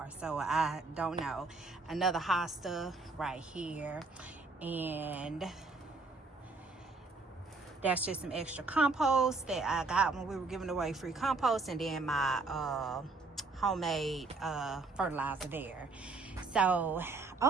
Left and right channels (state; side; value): quieter; left; 3.8 dB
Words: so I don't know. Another hosta right here, and that's just some extra compost that I got when we were giving away free compost, and then my homemade fertilizer there. So